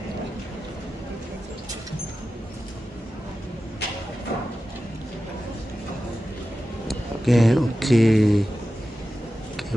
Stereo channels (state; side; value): normal; both; correlation 0.93